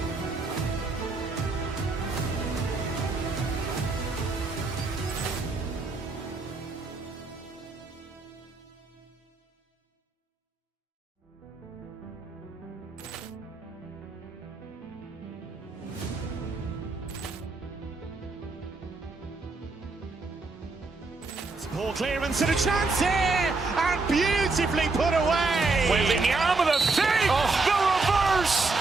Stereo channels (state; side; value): quieter; left; 3.7 dB